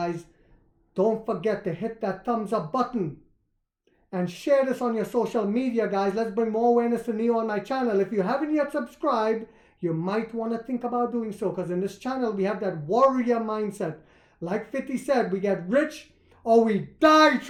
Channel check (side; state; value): both; identical; correlation 1.00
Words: don't forget to hit that thumbs up button and share this on your social media, guys. Let's bring more awareness to Nio on my channel. If you haven't yet subscribed, you might want to think about doing so, because in this channel we have that warrior mindset. Like 50 said, we get rich or we die